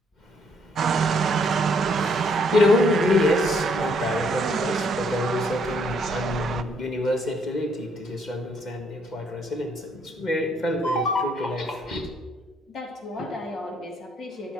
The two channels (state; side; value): normal; both; correlation 0.68